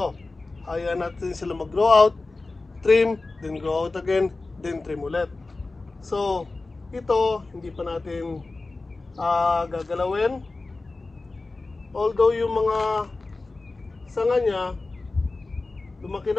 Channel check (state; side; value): quieter; right; 3.4 dB